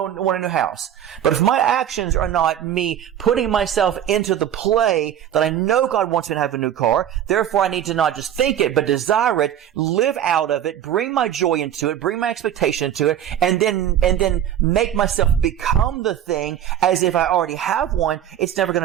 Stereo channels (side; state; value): left; quieter; 10.4 dB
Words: want a new house. But if my actions are not me putting myself into the play that I know God wants me to have a new car, therefore I need to not just think it, but desire it, live out of it, bring my joy into it, bring my expectation into it, and then make myself become the thing as if I already have one, it's never going